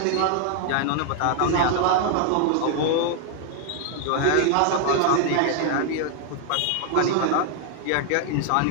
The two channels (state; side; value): different; both; correlation 0.00